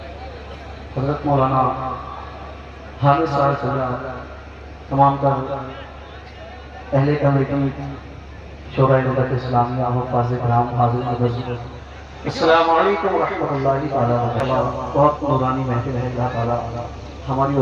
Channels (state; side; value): identical; both; correlation 1.00